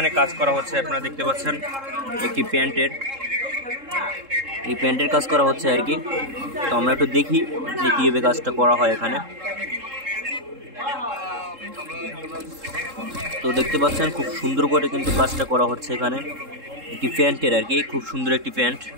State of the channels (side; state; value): left; late; 3.7 ms